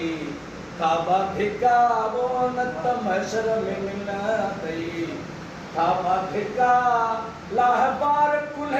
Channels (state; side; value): identical; both; correlation 1.00